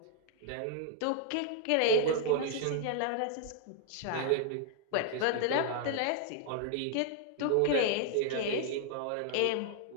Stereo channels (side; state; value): both; different; correlation 0.00